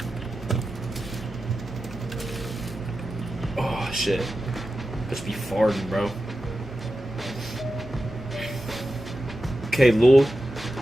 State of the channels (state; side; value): normal; both; correlation 0.92